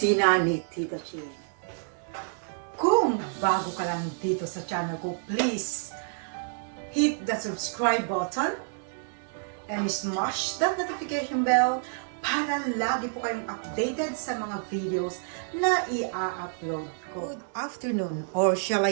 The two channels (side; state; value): left; silent; 57 dB below the other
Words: ni Tita Ching. Kung bago ka lang dito sa channel ko, please hit the subscribe button and smash that notification bell para lagi po kayong updated sa mga videos na i-upload ko. Good afternoon, or shall I